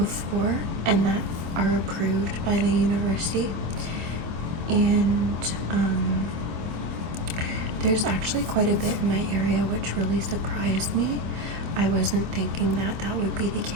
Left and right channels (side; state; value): left; late; 25 ms